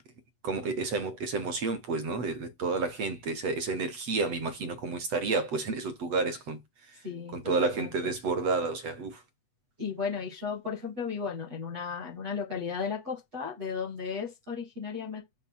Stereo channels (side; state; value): left; late; 8.1 ms